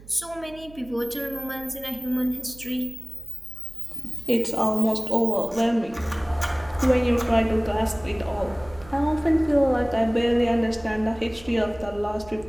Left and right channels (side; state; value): right; noise; hum, 20 dB below the sound